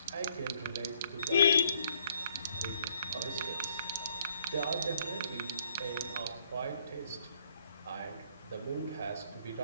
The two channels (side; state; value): both; inverted; correlation -0.66